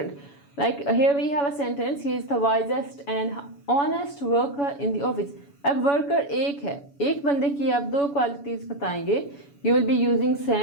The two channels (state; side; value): late; right; 7.1 ms